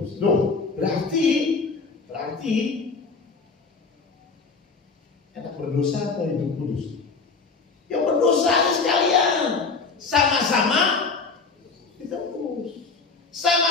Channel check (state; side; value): quieter; right; 4.5 dB